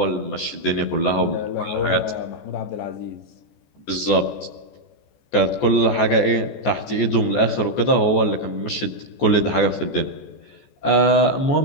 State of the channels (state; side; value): late; right; 14 ms